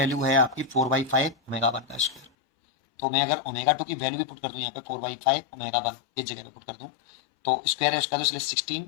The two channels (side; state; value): right; drops out; at 2.3 s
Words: है आपकी 4/5 ओमेगा 1 का स्क्वायर, तो मैं अगर ओमेगा 2 की वैल्यू भी पुट कर दूँ यहाँ पे 4/5 ओमेगा 1 इस जगह पे पुट कर दूँ तो स्क्वायर है उसका, तो इसलिए